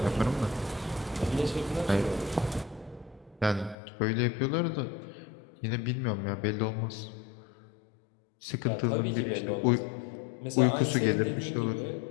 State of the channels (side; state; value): right; drops out; at 3.8 s